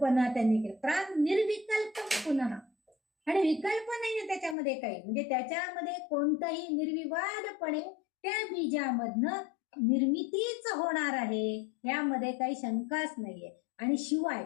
त्यांनी केली. प्राण निर्विकल्प पुन्हा, आणि विकल्प नाहीये त्याच्यामध्ये काही, म्हणजे त्याच्यामध्ये कोणताही निर्विवादपणे त्या बीजामधनं निर्मितीच होणार आहे, यामध्ये काही शंकाच नाहीये. आणि शिवाय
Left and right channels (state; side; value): drops out; right; at 4.5 s